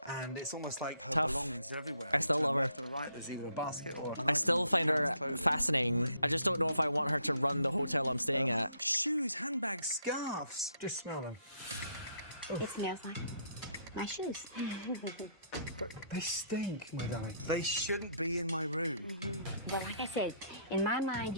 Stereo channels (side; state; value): both; inverted; correlation -0.69